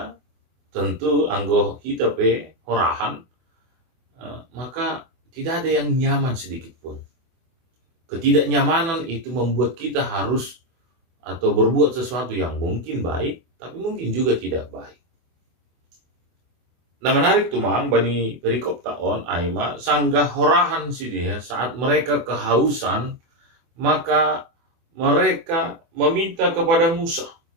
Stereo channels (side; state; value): left; late; 24 ms